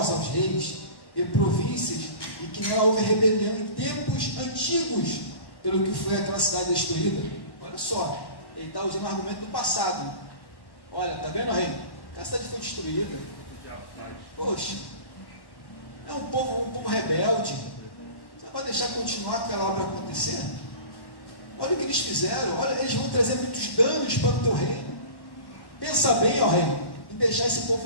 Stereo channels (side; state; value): right; late; 1.1 ms